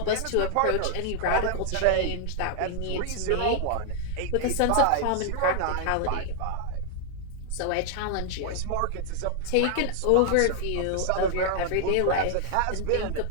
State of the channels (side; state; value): both; different; correlation 0.00